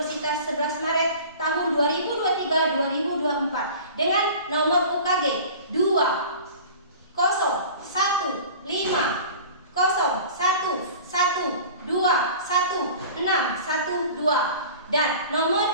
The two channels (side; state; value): both; inverted; correlation -0.41